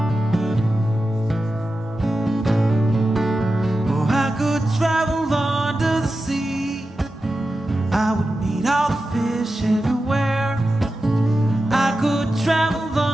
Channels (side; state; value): both; normal; correlation 0.92